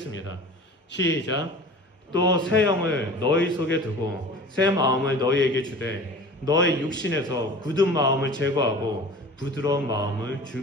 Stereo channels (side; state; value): both; normal; correlation 0.40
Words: 시작. 또 새 영을 너희 속에 두고 새 마음을 너희에게 주되 너의 육신에서 굳은 마음을 제거하고 부드러운 마음을